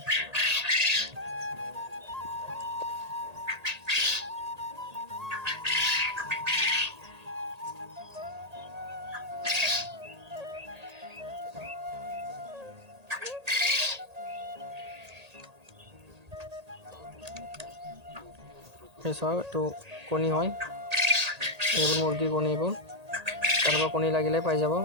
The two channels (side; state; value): left; late; 1.8 ms